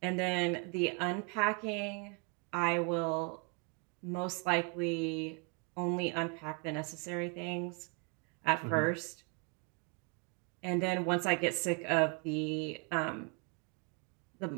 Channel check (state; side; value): quieter; left; 32.0 dB